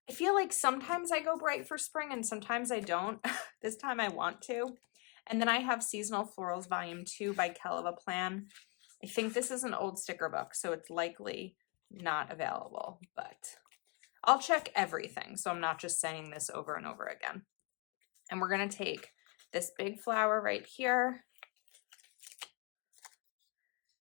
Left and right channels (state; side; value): quieter; right; 32.7 dB